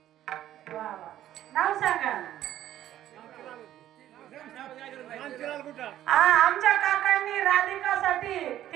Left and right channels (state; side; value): quieter; left; 12.5 dB